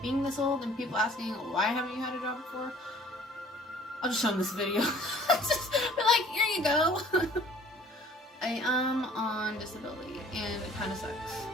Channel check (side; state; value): both; normal; correlation 0.53